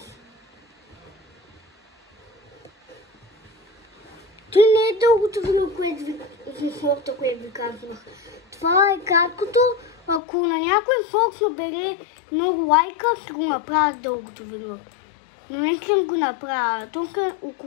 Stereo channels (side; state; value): right; drops out; at 10.2 s